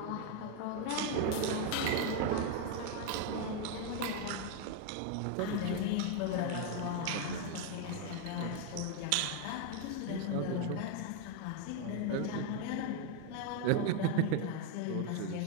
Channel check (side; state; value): both; different; correlation 0.01